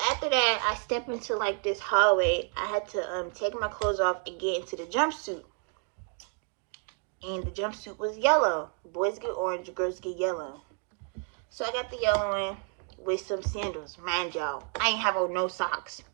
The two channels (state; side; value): quieter; left; 38.5 dB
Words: after that, I stepped into like this hallway. I had to take my clothes off and get into the jumpsuit. And the jumpsuit was yellow. Boys get orange, girls get yellow. So I got the yellow one with some sandals. Mind y'all, I ain't have on no socks.